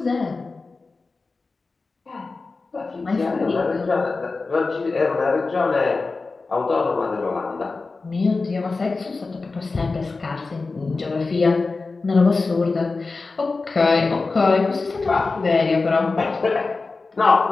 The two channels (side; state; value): right; quieter; 3.9 dB